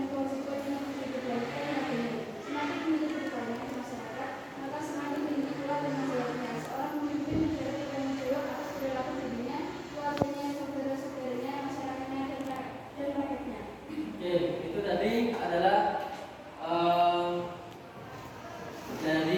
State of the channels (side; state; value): both; identical; correlation 1.00